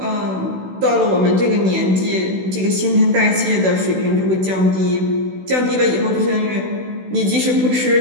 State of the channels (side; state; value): left; late; 16 ms